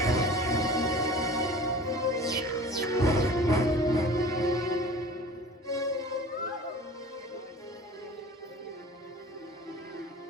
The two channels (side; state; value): both; normal; correlation 0.42